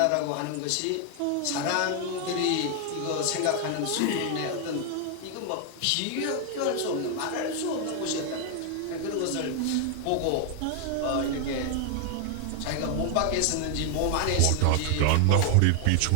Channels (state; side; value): different; both; correlation 0.00